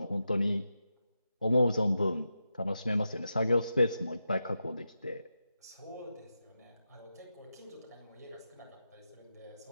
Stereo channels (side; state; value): both; inverted; correlation -0.89